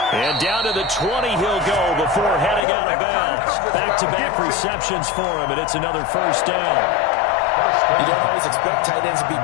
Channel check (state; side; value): drops out; right; at 2.7 s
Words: And down to the 20 he'll go before heading out of bounds. Back-to-back receptions for him, and it's another 1st down. You don't always expect tight ends to be